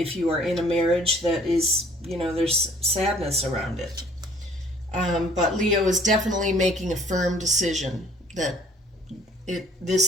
you are in a marriage that is, there's sadness around it. But Leo is definitely making a firm decision that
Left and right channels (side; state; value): both; normal; correlation 0.57